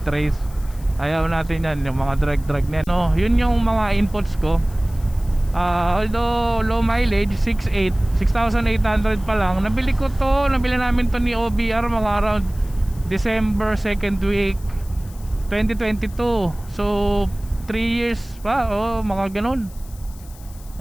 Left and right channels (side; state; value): left; noise; hiss, 23 dB below the sound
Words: race, ayaw natin yan, yung mga drag na yan, no. Yun yung mga inputs ko. Although low mileage, 6,800 pa lang, nabili namin to ni OBR mga around December 2nd week 2022. So 3 years pa, mga ganun,